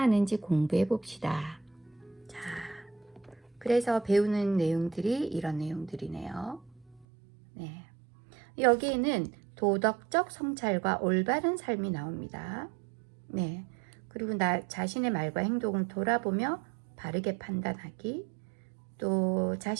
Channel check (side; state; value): left; drops out; at 7.1 s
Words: 공부해 봅시다. 자, 그래서 배우는 내용들이 이런 내용들이네요. 네. 여기에는 도덕적 성찰과 올바른 삶이 나옵니다. 네. 그리고 나 자신의 말과 행동을 돌아보며 바르게 판단하기, 또